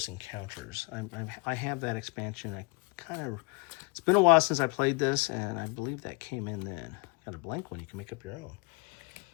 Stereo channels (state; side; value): quieter; right; 29.8 dB